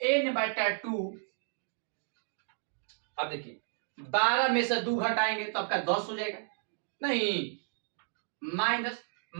n/2। अब देखिए 12 में से 2 घटाएंगे तो आपका 10 हो जाएगा। नहीं,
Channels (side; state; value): left; silent; digital silence